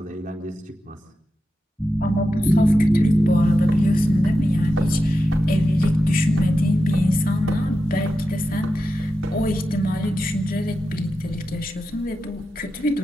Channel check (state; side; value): normal; both; correlation 0.90